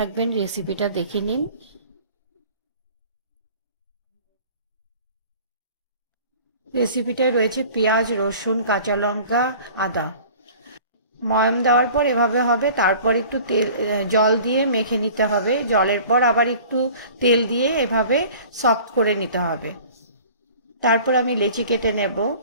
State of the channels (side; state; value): both; inverted; correlation -0.46